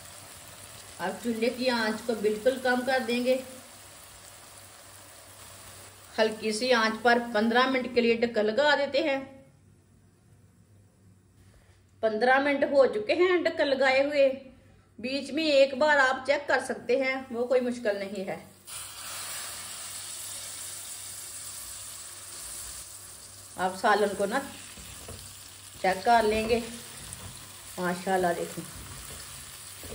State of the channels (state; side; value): identical; both; correlation 1.00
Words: अब चूल्हे की आंच को बिल्कुल कम कर देंगे। हल्की सी आंच पर 15 मिनट के लिए ढक्कन लगा देते हैं। 15 मिनट हो चुके हैं ढक्कन लगाए हुए। बीच में एक बार आप चेक कर सकते हैं, वो कोई मुश्किल नहीं है। आप सालन को ना चेक कर लेंगे। माशाल्लाह देखो